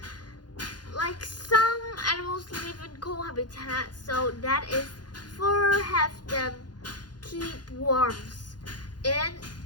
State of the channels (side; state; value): right; late; 0.70 ms